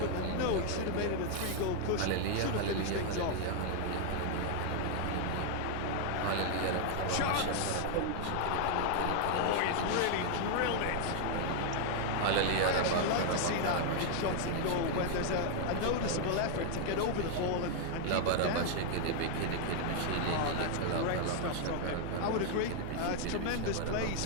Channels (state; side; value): different; both; correlation 0.00